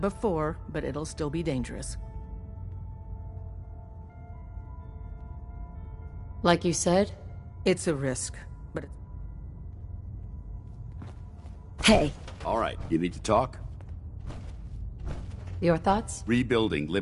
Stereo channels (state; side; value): identical; both; correlation 1.00